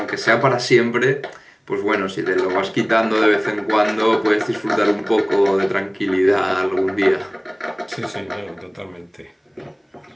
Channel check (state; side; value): identical; both; correlation 1.00